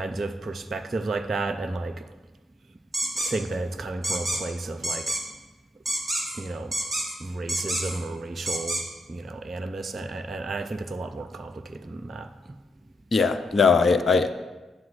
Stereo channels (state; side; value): normal; both; correlation 0.79